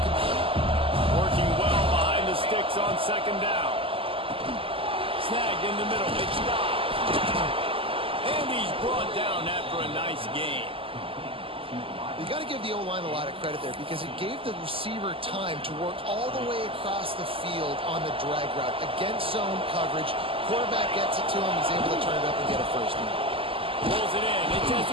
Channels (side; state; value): left; late; 0.26 ms